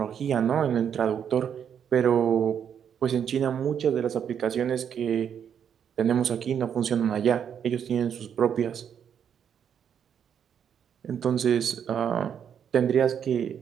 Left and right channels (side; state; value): left; quieter; 8.2 dB